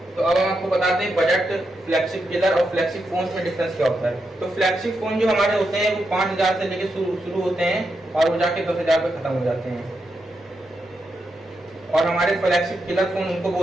तो अब हम आपको बताते हैं बजट, फ्लैगशिप किलर और फ्लैगशिप फोन में डिफरेंस क्या होता है। तो फ्लैगशिप फोन जो हमारे होते हैं वो 5,000 से लेके शुरू होते हैं और वो जाके 10,000 पे खत्म हो जाते हैं। और हमारे फ्लैगशिप किलर फोन उनको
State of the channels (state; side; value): normal; both; correlation 0.85